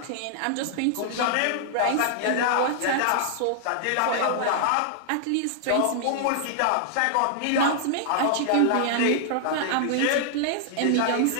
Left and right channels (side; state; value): both; different; correlation -0.01